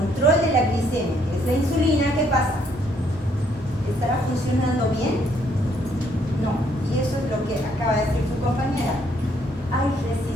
de la glicemia, que es la insulina, ¿qué pasa? ¿Estará funcionando bien? No. Y eso es lo que acaba de decir su compañera. Hay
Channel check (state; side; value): normal; both; correlation 0.69